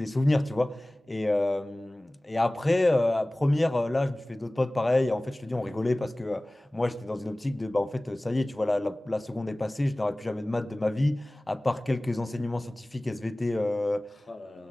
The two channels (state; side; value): normal; both; correlation 0.98